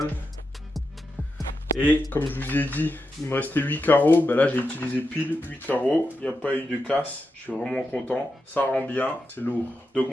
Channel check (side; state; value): both; normal; correlation 0.88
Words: Et comme je vous ai dit, il me restait 8 carreaux. Ben là, j'ai utilisé pile 8 carreaux. Il n'y a pas eu de casse. Je suis vraiment content. Ça rend bien. C'est lourd. Donc